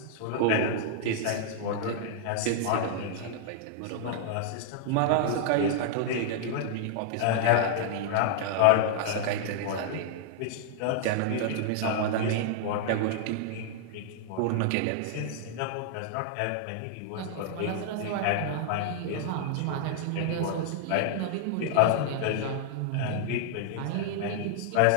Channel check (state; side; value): different; both; correlation -0.01